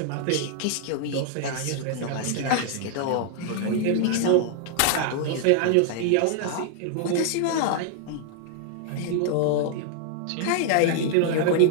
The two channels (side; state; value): both; different; correlation -0.01